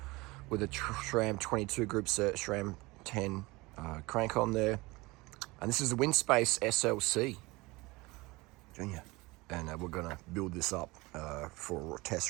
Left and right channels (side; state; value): left; quieter; 22.6 dB